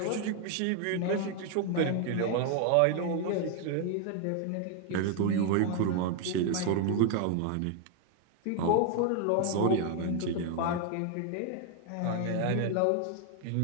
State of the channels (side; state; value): both; different; correlation 0.00